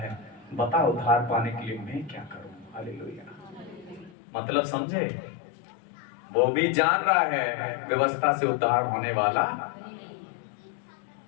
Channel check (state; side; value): drops out; right; at 4.2 s